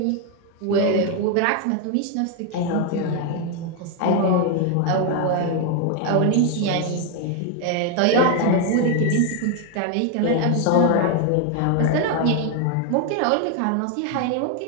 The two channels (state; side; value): different; both; correlation 0.01